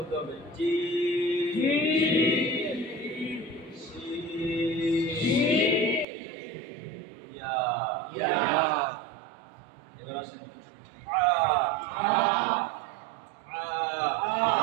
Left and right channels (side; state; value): left; drops out; at 6.1 s